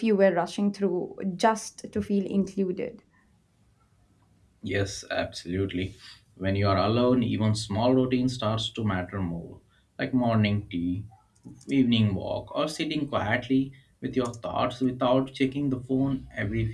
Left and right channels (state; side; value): identical; both; correlation 1.00